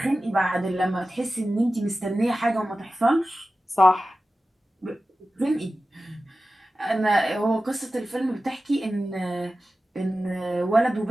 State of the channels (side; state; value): both; normal; correlation 0.94